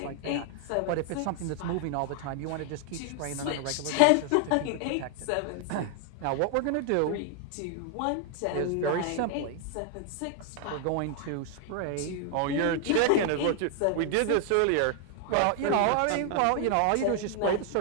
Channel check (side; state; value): both; different; correlation 0.00